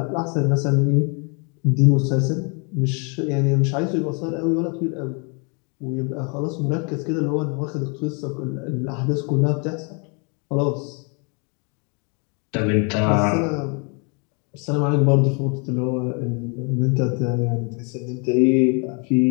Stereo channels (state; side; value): quieter; right; 35.1 dB